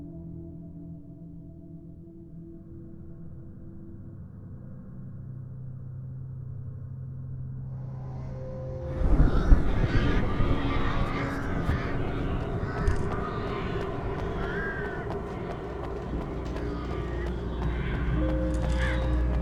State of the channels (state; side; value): identical; both; correlation 1.00